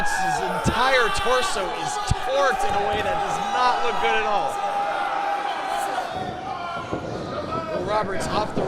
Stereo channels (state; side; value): identical; both; correlation 1.00